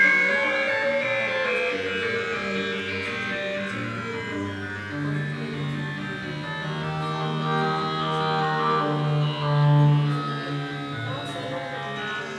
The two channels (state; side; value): identical; both; correlation 1.00